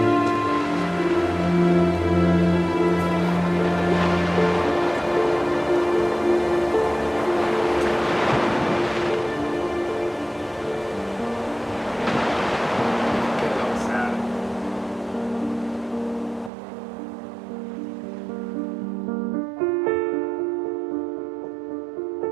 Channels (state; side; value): drops out; left; at 16.5 s